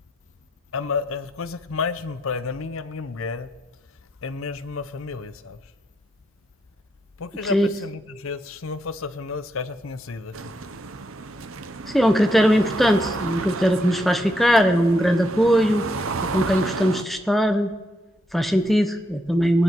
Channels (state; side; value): normal; both; correlation 0.79